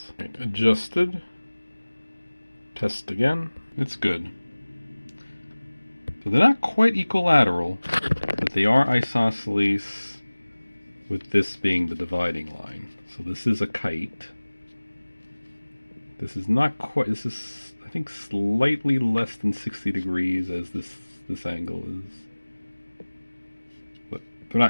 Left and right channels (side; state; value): both; inverted; correlation -1.00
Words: Right, adjusted. Test again. It's good. So they're not quite equilateral, but they are isosceles, with this being the dividing line. So this is a kite. This is not quite, this is, I think, slightly less than 60 degrees as this angle is. But they're